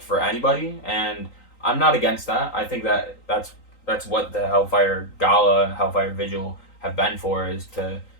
anybody, and I'm not against that. I think that that's what the Hellfire Gala, Hellfire Vigil have been for, is to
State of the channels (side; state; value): right; late; 3.9 ms